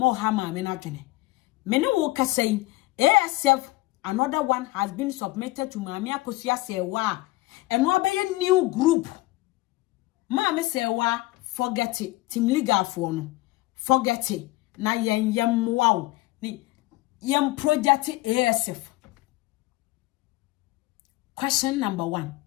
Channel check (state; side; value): quieter; right; 19.8 dB